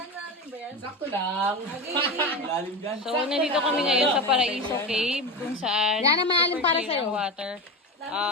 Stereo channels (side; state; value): both; normal; correlation 0.22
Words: Sakto lang. Lalim dyan. So, nandito kami ngayon sa Paraiso Cave, kung saan Yan ang malalim para clear sa'yo. ang water.